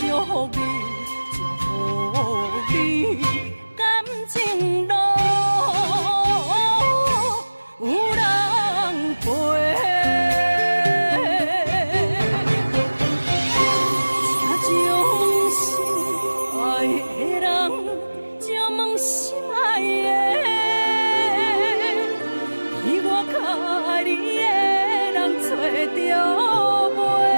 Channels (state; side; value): inverted; both; correlation -1.00